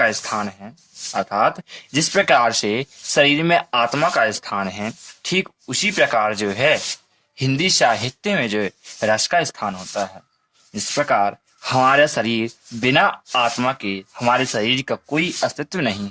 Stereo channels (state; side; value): identical; both; correlation 1.00